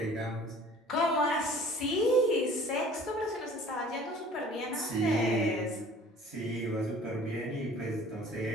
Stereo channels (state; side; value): normal; both; correlation 0.49